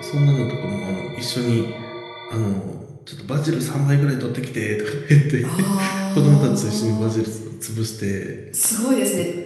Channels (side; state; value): both; identical; correlation 1.00